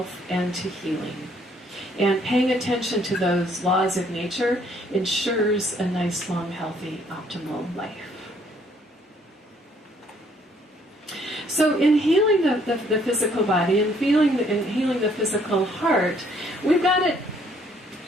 and to healing. And paying attention to those laws of nature ensures a nice, long, healthy, optimal life. So in healing the physical body and healing the physical heart, we've got to,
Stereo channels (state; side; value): normal; both; correlation 0.65